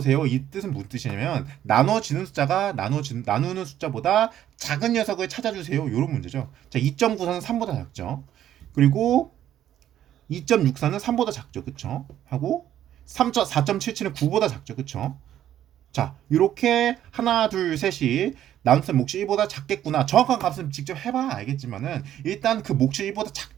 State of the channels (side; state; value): left; quieter; 11.5 dB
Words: 이 뜻은 무슨 뜻이냐면 나누어지는 숫자가 나누는 숫자보다 작은 녀석을 찾아주세요. 이런 문제죠. 자, 2.94는 3보다 작죠. 그리고 2.64는 3보다 작죠. 그쵸? 하고 4.77은 9보다 작죠. 그쵸? 자, 이렇게 하나, 둘, 셋이 나눗셈 몫이 1보다 작겠구나. 정확한 값은 직접 해봐야 알겠지만은 일단 그 몫이 1보다